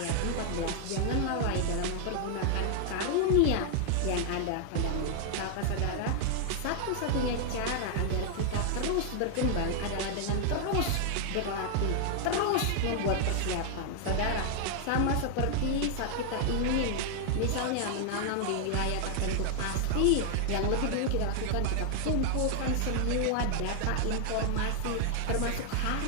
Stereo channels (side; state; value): both; different; correlation 0.00